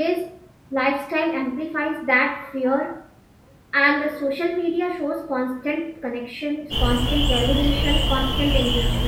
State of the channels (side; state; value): both; identical; correlation 1.00